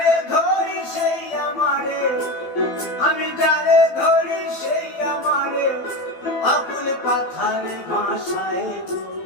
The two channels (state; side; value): late; right; 12 ms